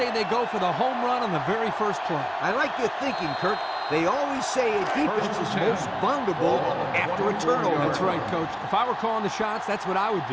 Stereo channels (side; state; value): both; identical; correlation 1.00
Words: they go for the home run on the very first play. I like your thinking, Kirk. They always say a defense is most vulnerable after a turnover. That's right, Coach. If I were calling the shots, that's what I would